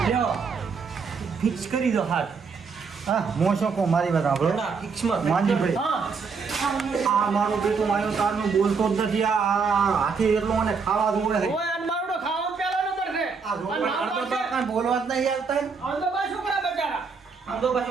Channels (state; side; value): quieter; left; 5.2 dB